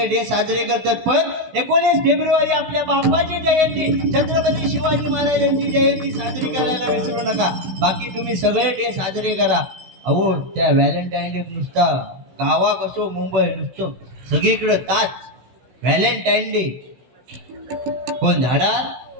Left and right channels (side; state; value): left; late; 16 ms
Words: डे साजरे करतात. पण 19 फेब्रुवारी आपल्या बाप्पाची जयंती, छत्रपती शिवाजी महाराजांची जयंती साजरी करायला विसरू नका. बाकी तुम्ही सगळे डे साजरे करा. अहो त्या व्हॅलेंटाईन डे नुसता गावाक असो मुंबई नुसतं सगळीकडे ताच व्हॅलेंटाईन डे. कोण झाडा